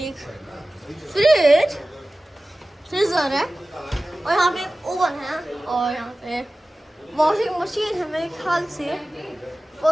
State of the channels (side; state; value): both; normal; correlation 0.97